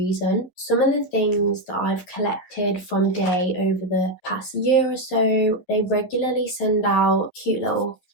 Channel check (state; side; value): late; right; 11 ms